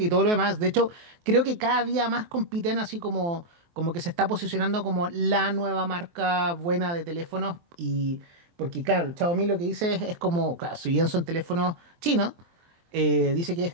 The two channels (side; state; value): left; late; 23 ms